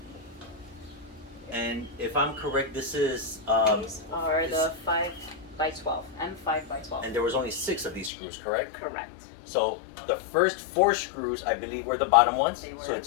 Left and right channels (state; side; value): drops out; right; at 8.1 s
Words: And if I'm correct, this is These are the 5x12, M5x12. and there was only 6 of these screws, correct? Correct. So the first 4 screws, I believe, were the bottom ones. They were. So